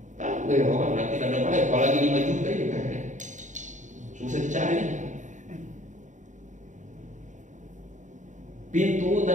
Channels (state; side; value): late; left; 0.36 ms